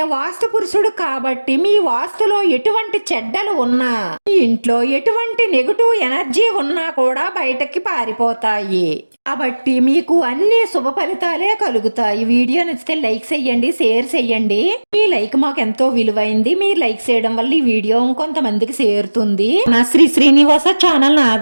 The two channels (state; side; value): inverted; both; correlation -1.00